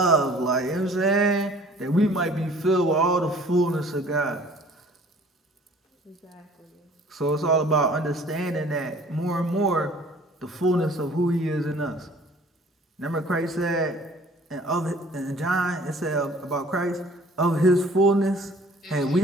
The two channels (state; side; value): normal; both; correlation 0.52